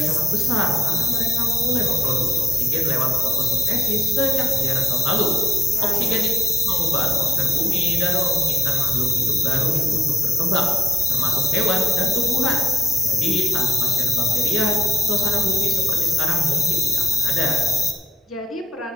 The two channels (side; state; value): both; normal; correlation 0.75